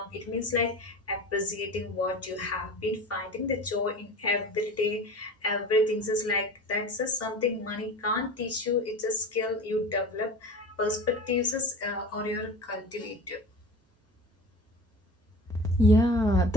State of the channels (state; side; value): normal; both; correlation 0.36